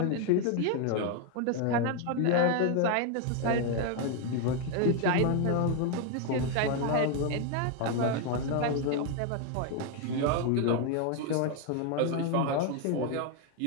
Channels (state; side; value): different; both; correlation 0.01